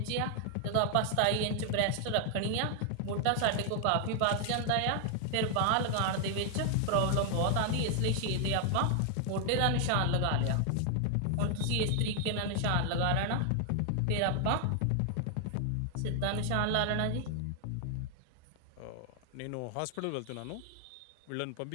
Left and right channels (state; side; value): different; both; correlation 0.00